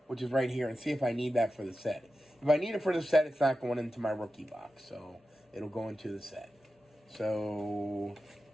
which is right here, and see if I need that for the set. If I need it for the set, it's not going into my rookie box, so it'll go into the set. So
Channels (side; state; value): both; normal; correlation 0.92